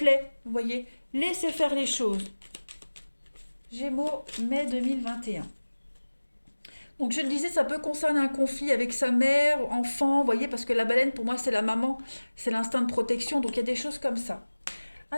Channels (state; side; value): inverted; both; correlation -1.00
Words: vous voyez. Laissez faire les choses. Gémeaux, mai 2021. Donc je le disais, ça peut concerner un conflit avec sa mère, enfant, vous voyez, parce que la baleine, pour moi, c'est la maman, c'est l'instinct de protection, donc il y a des choses comme ça.